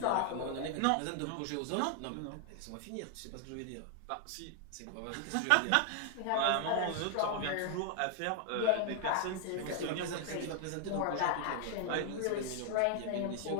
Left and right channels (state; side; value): different; both; correlation 0.00